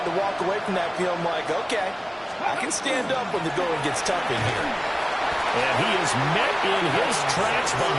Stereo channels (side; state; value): both; identical; correlation 1.00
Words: to walk away from that field like, okay, I can stand up when the going gets tough in here. And he is met in his tracks